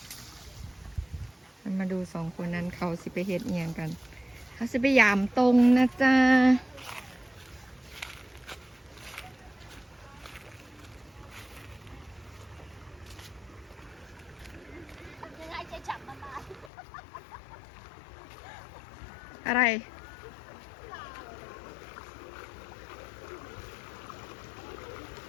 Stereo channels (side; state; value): right; drops out; at 16.7 s